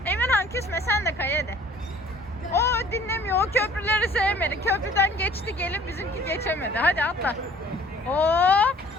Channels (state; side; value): normal; both; correlation 0.53